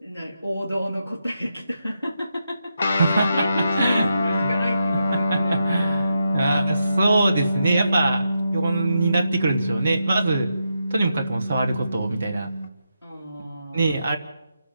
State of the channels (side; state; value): both; inverted; correlation -0.85